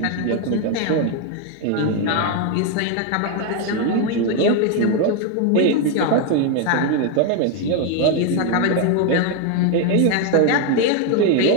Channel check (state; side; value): different; both; correlation 0.01